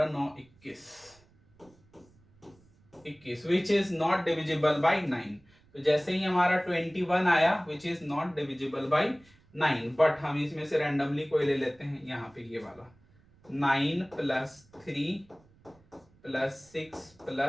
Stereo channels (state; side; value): noise; right; rumble, 30 dB below the sound